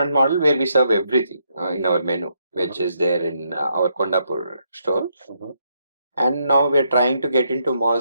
model where we serve everything in our menu, which is there in our Kondapur store. And now we're trying to get into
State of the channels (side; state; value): both; inverted; correlation -0.77